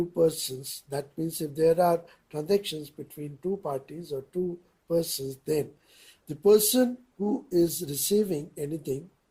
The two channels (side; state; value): both; identical; correlation 1.00